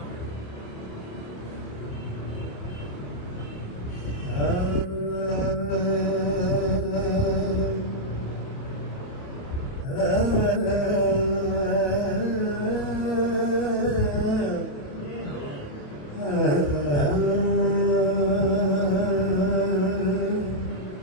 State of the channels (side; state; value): right; late; 28 ms